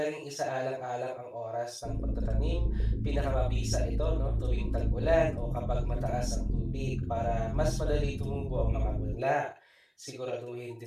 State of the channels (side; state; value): both; identical; correlation 1.00